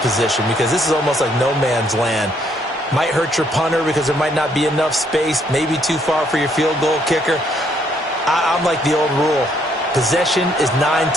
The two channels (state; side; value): normal; both; correlation 0.69